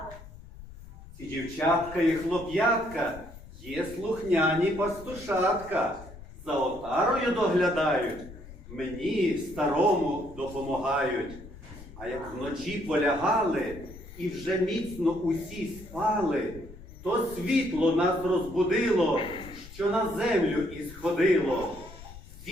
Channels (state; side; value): noise; left; rumble, 17 dB below the sound